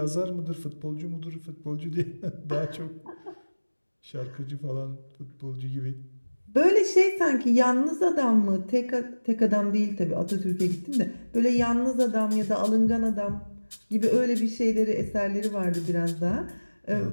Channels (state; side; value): inverted; both; correlation -1.00